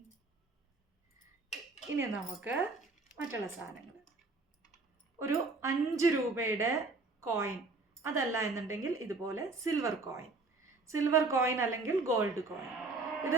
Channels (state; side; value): quieter; left; 3.6 dB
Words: ഇനി നമുക്ക് മറ്റുള്ള സാധനങ്ങൾ, ഒരു 5 രൂപയുടെ കോയിൻ, അതല്ല എന്നുണ്ടെങ്കിൽ ഇതുപോലെ സിൽവർ കോയിൻ അല്ലെങ്കിൽ ഗോൾഡ് കോയിൻ.